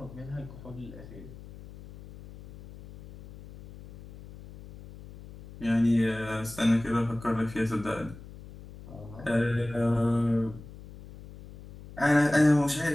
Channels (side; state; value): left; noise; hum, 17 dB below the sound